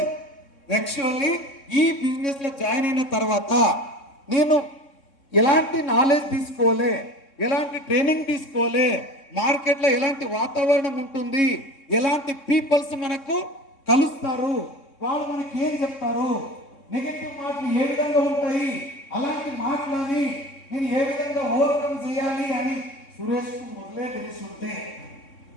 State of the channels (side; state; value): right; late; 3.6 ms